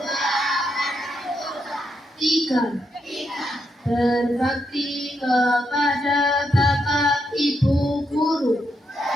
Tiga, berbakti kepada Bapak Ibu Guru.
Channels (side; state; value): both; normal; correlation 0.81